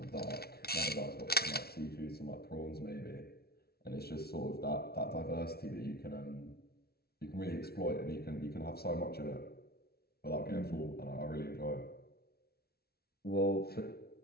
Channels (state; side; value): late; right; 0.45 ms